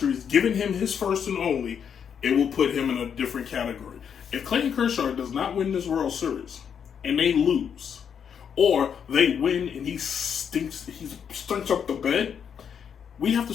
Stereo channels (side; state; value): right; quieter; 7.6 dB